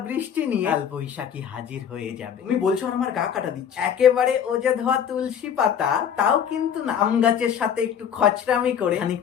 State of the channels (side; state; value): right; quieter; 8.3 dB